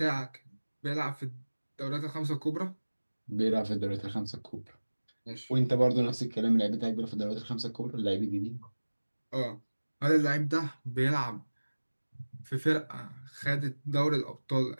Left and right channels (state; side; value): inverted; both; correlation -1.00